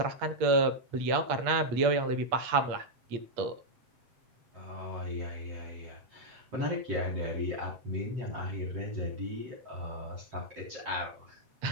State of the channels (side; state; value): left; late; 8.5 ms